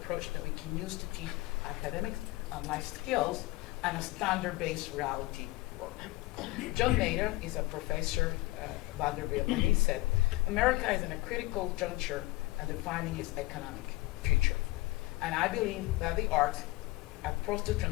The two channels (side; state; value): right; quieter; 20.4 dB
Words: approach that we can use to teach academics and life skills and a standard-based reality work. John Nader is a professor at Vanderbilt, and he said, America is in a critical juncture and defining its economic future. And I believe that the arts are supposed to